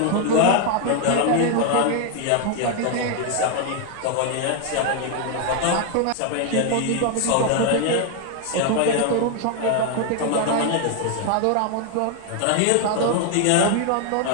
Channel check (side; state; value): both; different; correlation 0.00